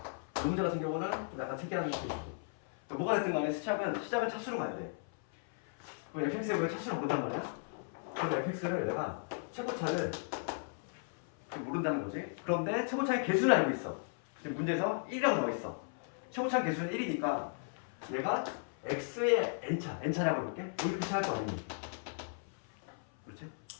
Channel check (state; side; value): silent; right; 54 dB below the other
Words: 이 문제 같은 경우는 좀 약간 특이한 케이스고 그러니까 뭐가 됐든 간에 시작은 차수로 가야 돼. 그럼 fx에 왜 차수를 모른단 말이야? 그럼 fx를 내가 최고차를 모른다는 거지. 그런데 최고차의 개수를 알고 있어. 지금 문제에서 1이라고 나와 있어. 최고차 개수는 1이니까 얘가 x의 n차라고 해볼게. 이렇게 시작할 거 아니니? 그렇지?